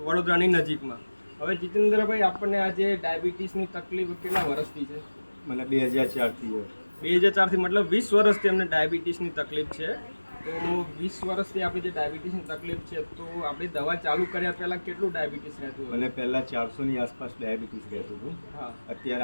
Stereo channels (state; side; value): inverted; both; correlation -1.00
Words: વડોદરાની નજીકમાં. હવે જીતેન્દ્રભાઈ, આપણને આજે ડાયાબિટીસની તકલીફ કેટલા વર્ષથી છે? મને 2004થી 2004થી, મતલબ 20 વર્ષથી અમને ડાયાબિટીસની તકલીફ છે. તો 20 વર્ષથી આપણી જે ડાયાબિટીસની તકલીફ છે, તો આપણી દવા ચાલુ કર્યા પહેલાં કેટલું ડાયાબિટીસ રહેતું હતું? મને પહેલાં 400ની આસપાસ ડાયાબિટીસ રહેતું હતું. હા. અત્યારે